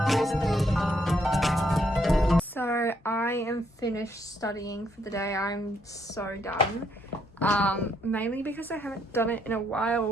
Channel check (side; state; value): both; normal; correlation 0.72